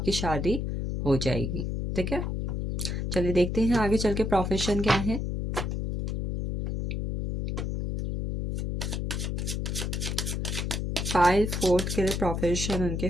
शादी हो जाएगी, ठीक है। चलिए देखते हैं आगे चल के प्रोफेशन क्या है। फाइल फोर्थ के लिए प्रोफेशन उनके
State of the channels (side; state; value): left; noise; hum, 2 dB below the sound